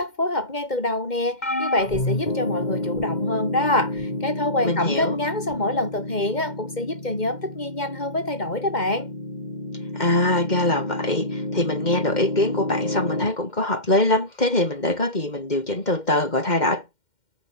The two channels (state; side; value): late; right; 2.1 ms